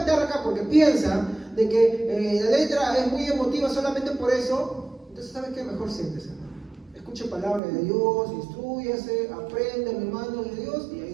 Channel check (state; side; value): drops out; left; at 7.6 s